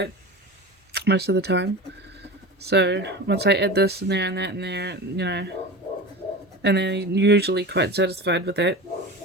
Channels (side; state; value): both; normal; correlation 0.30